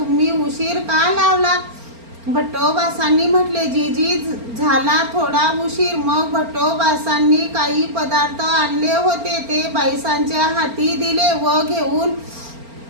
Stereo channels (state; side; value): late; left; 4.4 ms